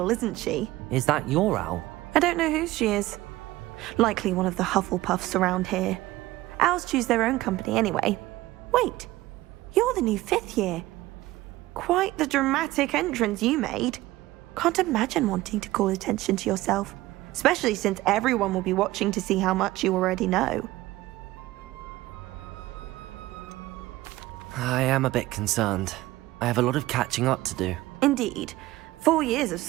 isn't she? Is that your owl? I don't know who she is. Likely one of the Hufflepuffs around here. Owls choose their own company anyway. Wait, you're the new 5th year. Quite the dramatic entrance you made. Can't imagine wanting to call attention to yourself, especially since everyone will be watching to see how much you already know. I am a bit concerned. I have a lot of catching up to do. Indeed. 4 years of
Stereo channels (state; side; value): quieter; left; 17.6 dB